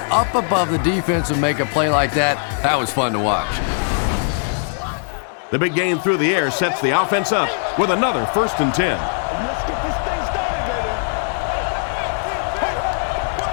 up above the defense and make a play like that, that was fun to watch. The big game through the air sets the offense up with another 1st and 10. Let's get this thing started, baby.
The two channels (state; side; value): silent; right; digital silence